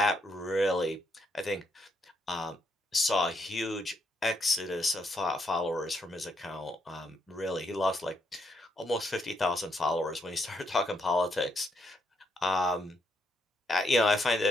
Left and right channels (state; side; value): normal; both; correlation 0.77